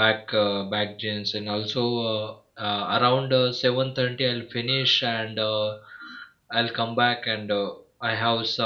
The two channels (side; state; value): both; identical; correlation 1.00